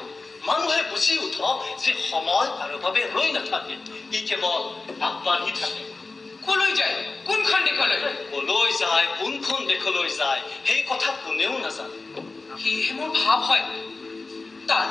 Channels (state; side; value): quieter; right; 3.7 dB